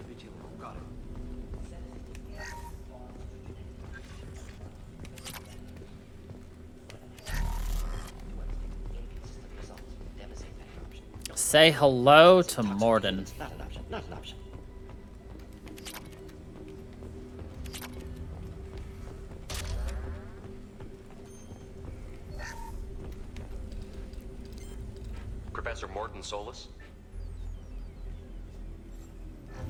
Got it. Say hello to Morden. Not an option. Not an option. Professor Morton Solus?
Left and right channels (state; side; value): identical; both; correlation 1.00